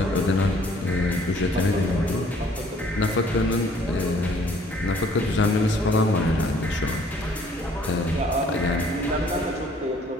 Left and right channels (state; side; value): normal; both; correlation 0.59